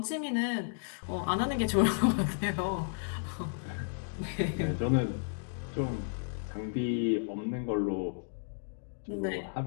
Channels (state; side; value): silent; right; digital silence